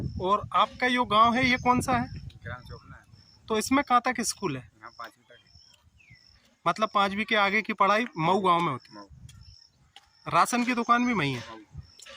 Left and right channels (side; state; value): both; identical; correlation 1.00